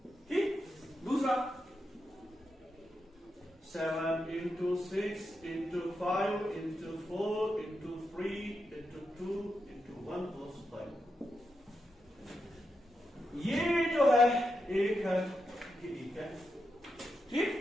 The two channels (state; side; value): normal; both; correlation 0.86